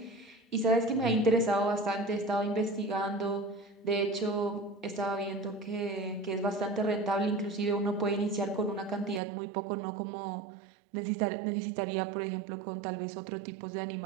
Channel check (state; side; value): drops out; left; at 9.2 s